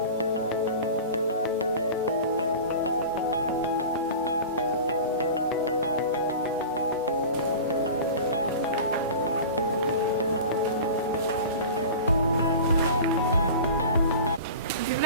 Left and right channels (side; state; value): both; inverted; correlation -0.35